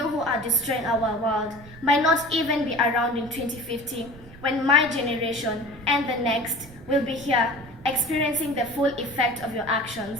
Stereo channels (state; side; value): noise; right; rumble, 19 dB below the sound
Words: who are destroying our world might not even be around in 2050 when my generation and the next will be here experiencing the full effect of your